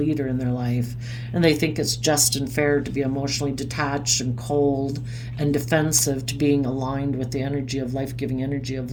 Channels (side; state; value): both; identical; correlation 1.00